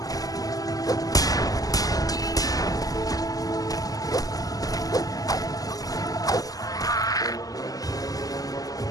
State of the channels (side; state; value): right; late; 0.17 ms